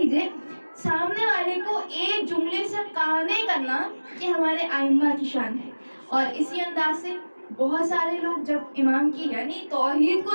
سامنے والے کو ایک جملے سے قانع کرنا کہ ہمارے ائمہ کی شان ہے۔ اور اسی انداز سے بہت سارے لوگ جب امام کی یعنی توحید کو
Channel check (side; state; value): both; inverted; correlation -1.00